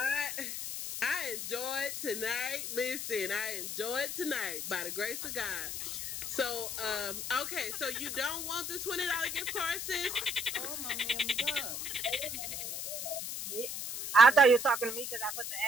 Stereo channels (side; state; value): left; noise; hiss, 5 dB below the sound